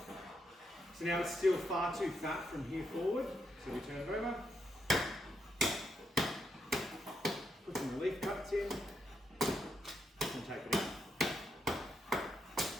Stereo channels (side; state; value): both; normal; correlation 0.80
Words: So now it's still far too fat from here forward, so we turn it over. Put some relief cuts in, and take it out.